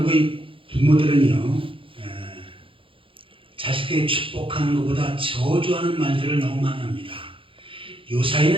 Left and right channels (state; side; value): late; left; 0.25 ms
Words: 부모들은요 자식들이 축복하는 것보다 저주하는 말들을 너무 많이 합니다.